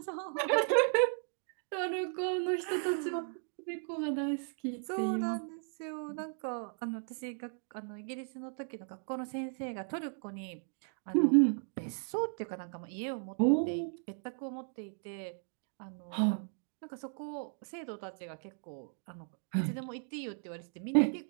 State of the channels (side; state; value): left; silent; 54 dB below the other